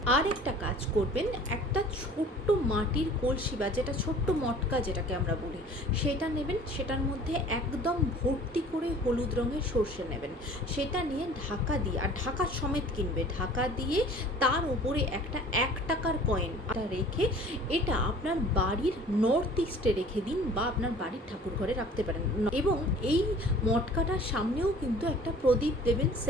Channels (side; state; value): both; normal; correlation 0.48